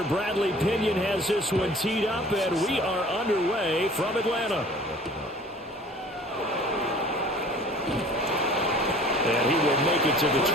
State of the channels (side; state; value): both; normal; correlation 0.48